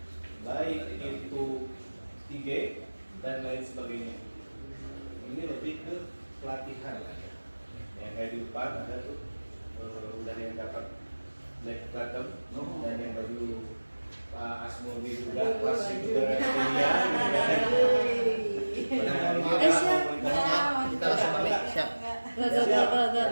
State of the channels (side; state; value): both; inverted; correlation -1.00